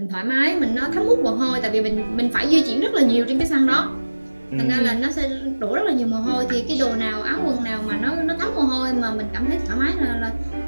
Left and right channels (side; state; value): both; inverted; correlation -1.00